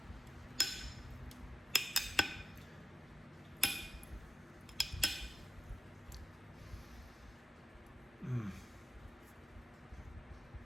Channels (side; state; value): both; normal; correlation 0.94